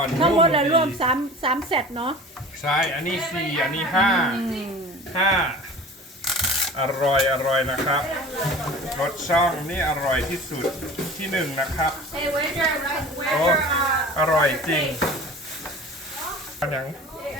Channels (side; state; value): both; normal; correlation 0.41